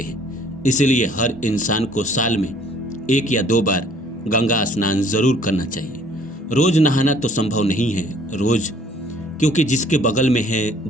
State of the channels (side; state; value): both; normal; correlation 0.57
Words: हैं। इसलिए हर इंसान को साल में 1 या 2 बार गंगा स्नान जरूर करना चाहिए। रोज नहाना तो संभव नहीं है रोज, क्योंकि जिसके बगल में है,